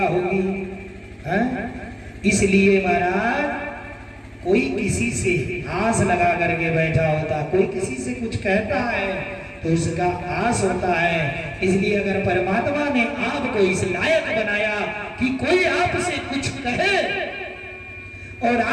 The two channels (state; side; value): identical; both; correlation 1.00